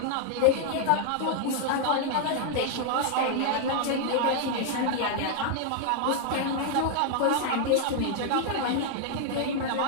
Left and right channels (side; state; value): both; different; correlation 0.00